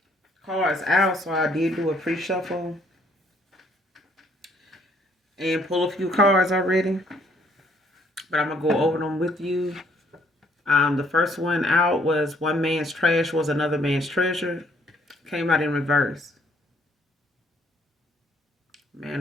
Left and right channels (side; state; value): both; normal; correlation 0.65